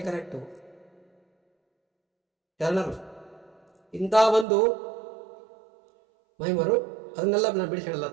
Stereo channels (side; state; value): left; drops out; at 4.5 s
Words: ಕರೆಕ್ಟು. ಶರಣರು ಇಂಥ ಒಂದು ಮಹಿಮರು, ಅದನ್ನೆಲ್ಲ ನಾನು ಬಿಡಿಸಿ ಹೇಳಲ್ಲ.